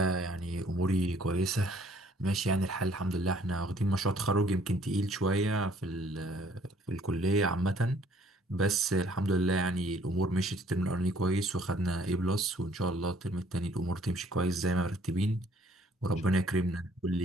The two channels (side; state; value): both; normal; correlation 0.60